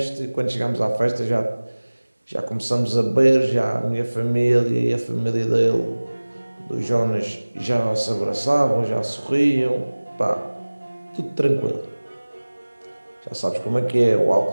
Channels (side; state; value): both; inverted; correlation -1.00